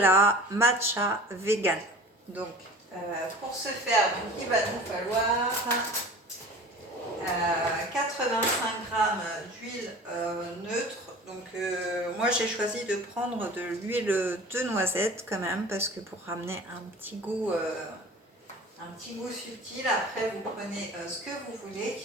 matcha vegan. Donc pour ce faire, donc, il va nous falloir 85 g d'huile neutre. Donc moi j'ai choisi de prendre de l'huile de noisette quand même, parce que pour ramener un petit goût subtil. Après vous prenez ce que vous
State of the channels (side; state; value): both; normal; correlation 0.40